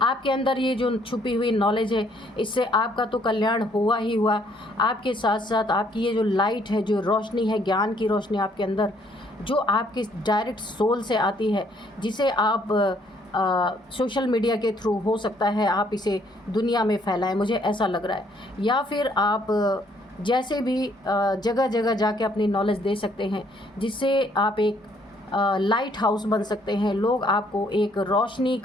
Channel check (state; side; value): normal; both; correlation 0.66